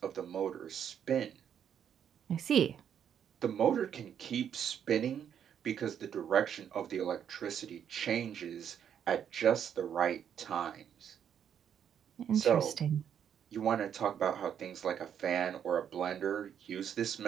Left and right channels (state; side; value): quieter; left; 8.7 dB